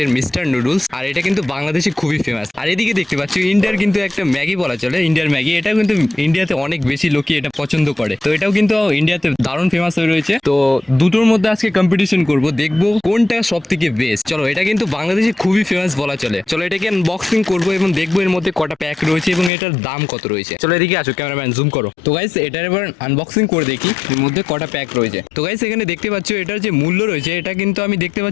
মিস্টার নুডলস, আর এটা কিন্তু বাংলাদেশে খুবই ফেমাস। আর এদিকে দেখতে পাচ্ছ ইন্ডিয়ার কিন্তু একটা ম্যাগি বলা চলে, ইন্ডিয়ার ম্যাগি। এটাও কিন্তু ইন্ডিয়াতে অনেক বেশি লোকই এটা পছন্দ করে, তো এটাও কিন্তু ইন্ডিয়াতে দারুণ ফেমাস হয়ে রয়েছে। তো দুটোর মধ্যে আজকে কম্পিটিশন করব, দেখবো কোনটা সব থেকে বেস্ট। চলো, এটা কিন্তু বাংলাদেশে খুবই ফেমাস বলা চলে। চলো এটাকে আনবক্সিং করবো এবং দেখবো এর মধ্যে কটা প্যাক রয়েছে এবং এটার দাম কত রয়েছে। চলো এদিকে আসো, ক্যামেরাম্যান জুম করো। তো গাইস এটার এবার আনবক্সিং করে দেখি এর মধ্যে কটা প্যাক রয়েছে। তো গাইস এখানে দেখতে পাচ্ছ এটার যে মূল্য রয়েছে, এটা কিন্তু আমি দেখতে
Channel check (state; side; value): drops out; right; at 19.5 s